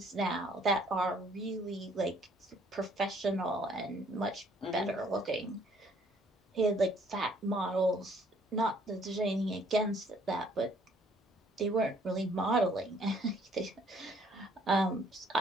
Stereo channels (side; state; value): both; normal; correlation 0.62